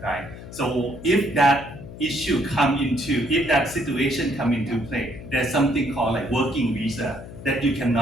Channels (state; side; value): noise; left; hum, 14 dB below the sound